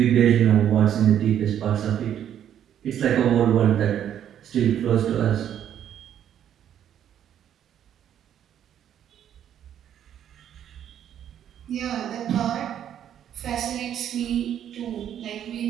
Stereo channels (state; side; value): quieter; left; 10.0 dB